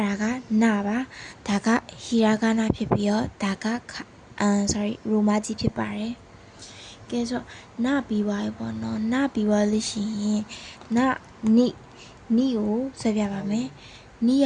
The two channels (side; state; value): both; identical; correlation 1.00